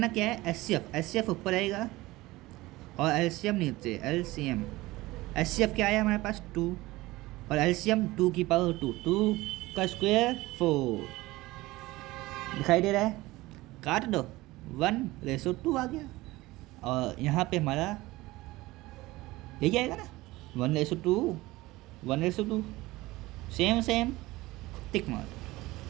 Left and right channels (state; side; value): quieter; left; 19.4 dB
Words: क्या है? एचसीएफ ऊपर आएगा और एलसीएम नीचे। एलसीएम एचसीएफ क्या आया हमारे पास? 2 और एलसीएम 2 की पावर 2। 2 का स्क्वायर 4। दिखाई दे रहा है? काट दो, 1:2 आ गया। और यहाँ पे हमारा यही आएगा ना, 1:2, 1:2। सेम टिक मार।